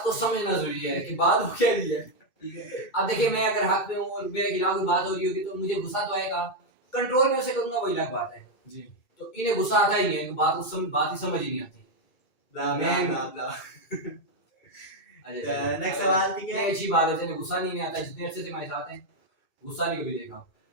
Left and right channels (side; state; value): right; late; 1.3 ms